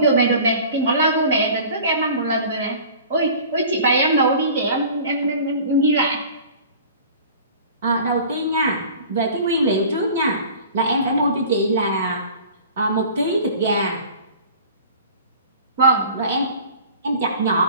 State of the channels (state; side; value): inverted; both; correlation -0.44